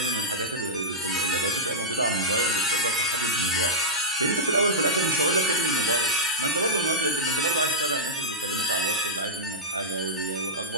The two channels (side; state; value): both; normal; correlation -0.08